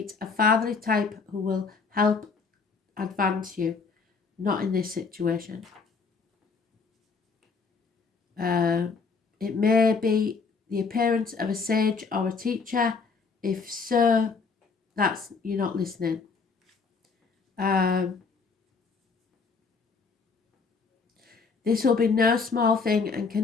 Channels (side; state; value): right; quieter; 4.9 dB